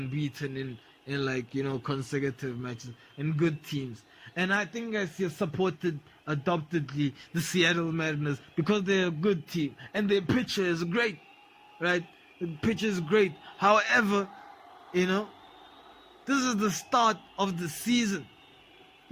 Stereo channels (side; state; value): both; identical; correlation 1.00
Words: in like, you know, consecutive matches, and good teams. And I think I supported adoptedly the Seattle Mariners because they're a good team and their pitcher is great, right? The pitch is great. However, this is the start of the season.